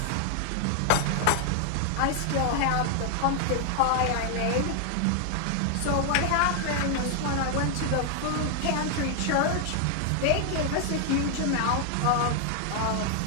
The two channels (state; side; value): different; both; correlation 0.00